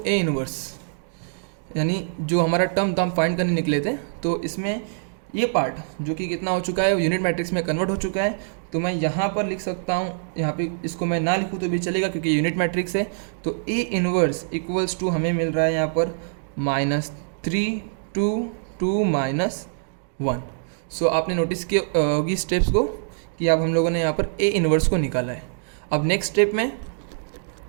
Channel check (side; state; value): left; silent; digital silence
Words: इनवर्स, यानी जो हमारा टर्म था हम फाइंड करने निकले थे, तो इसमें ये पार्ट जो कि कितना हो चुका है यूनिट मैट्रिक्स में कन्वर्ट हो चुका है। तो मैं यहाँ पर लिख सकता हूँ, यहाँ पे इसको मैं ना लिखूँ तो भी चलेगा क्योंकि यूनिट मैट्रिक्स है। तो A इनवर्स इक्वल्स टू हमें मिल रहा है यहाँ पर -3 2 2 -1। सो आपने नोटिस किया होगी स्टेप्स को कि अब हम लोगों ने यहाँ पर A इनवर्स को निकाला है। अब नेक्स्ट स्टेप में